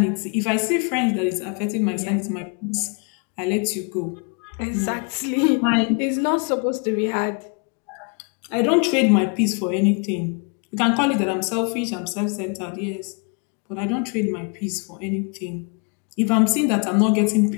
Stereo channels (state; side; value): quieter; right; 36.4 dB